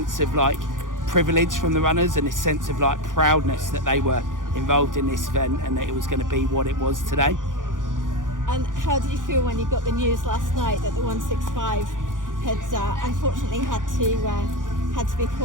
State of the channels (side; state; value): left; late; 0.88 ms